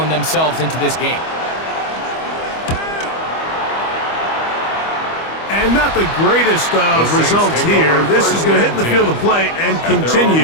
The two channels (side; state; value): right; late; 25 ms